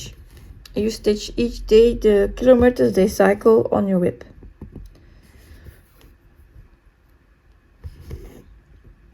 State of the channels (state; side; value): identical; both; correlation 1.00